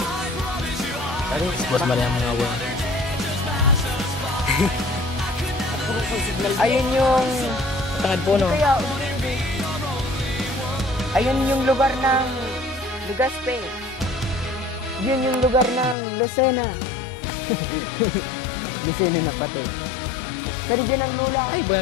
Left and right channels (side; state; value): right; drops out; at 16.0 s